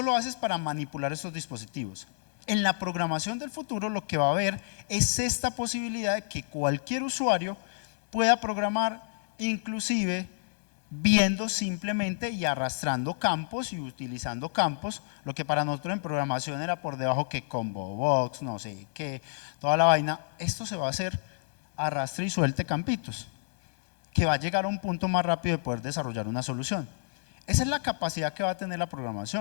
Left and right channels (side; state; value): right; silent; 58 dB below the other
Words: lo haces para manipular estos dispositivos. En la programación del futuro lo que va a haber es esta posibilidad de que cualquier usuario pueda programar, inclusive viendo simplemente y arrastrando campos y utilizando campos, lo que para nosotros en programación era por debajo que combo box, no sé qué, toda la vaina. Esto se va a hacer arrastre y suelte campitos, que va a llegar a un punto más rápido de poder desarrollar una solución. Esa es la capacidad que va a tener la